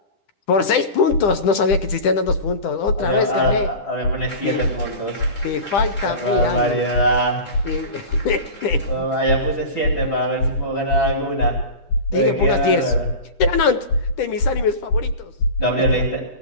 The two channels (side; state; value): right; late; 10 ms